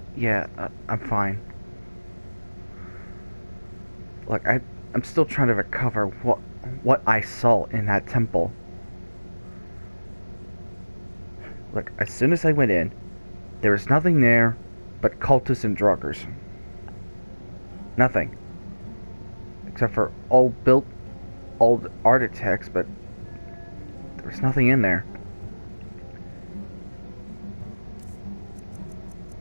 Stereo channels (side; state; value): both; inverted; correlation -1.00